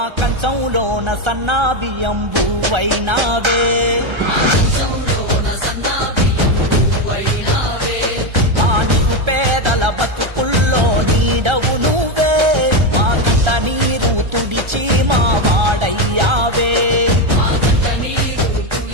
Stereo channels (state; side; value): late; left; 1.3 ms